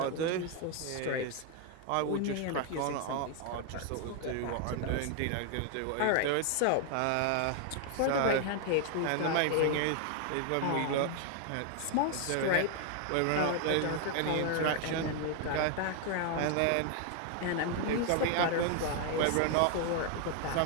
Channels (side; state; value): both; different; correlation 0.00